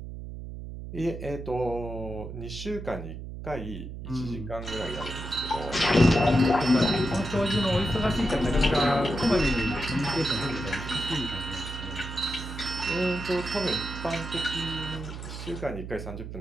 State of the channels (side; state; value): right; noise; hum, 9 dB below the sound